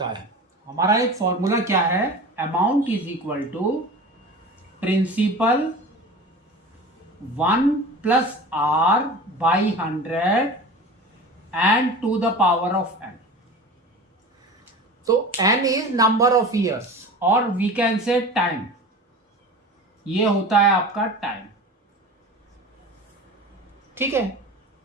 है, हमारा एक फॉर्मूला क्या है, amount is equal to principal 1 plus R by 100 and to the power of n। तो n is number of years और वी कैन से टाइम, ये होता है आपका टाइम। ठीक है,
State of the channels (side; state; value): both; normal; correlation 0.35